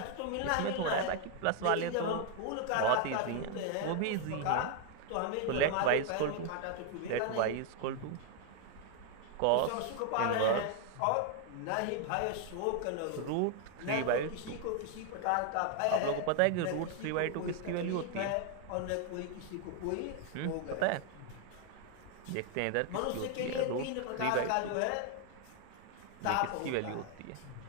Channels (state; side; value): different; both; correlation 0.00